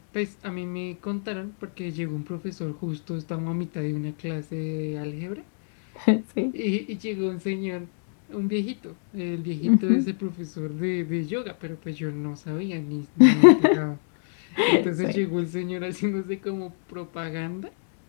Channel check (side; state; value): right; silent; 60 dB below the other